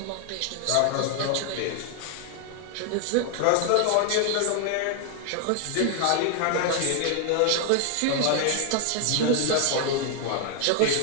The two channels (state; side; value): different; both; correlation 0.00